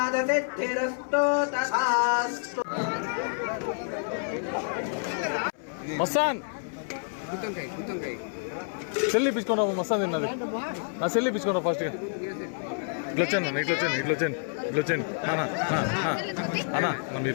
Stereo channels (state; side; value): silent; right; 59 dB below the other